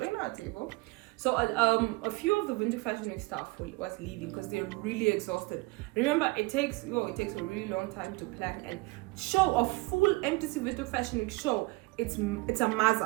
our table. So a few of the Winter Fashion Week staff was leaving because they're really exhausted. Remember, it takes a really long time to plan and show a full MTC Winter Fashion Week show. It's a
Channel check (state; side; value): quieter; left; 24.0 dB